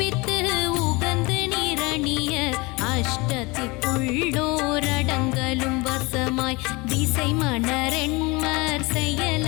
உகந்து நிரணிய அஷ்டத்திற்குள்ளோரடங்கலும் வசமாய் திசை மணரெண்மர்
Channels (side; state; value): right; quieter; 25.3 dB